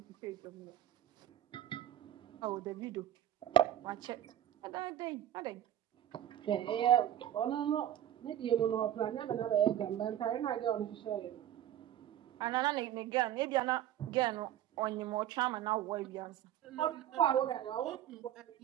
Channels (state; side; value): quieter; left; 11.5 dB